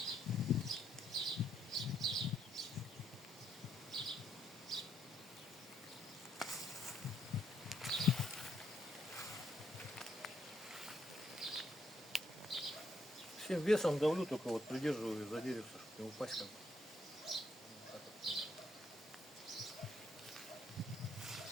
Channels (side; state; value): both; normal; correlation 0.73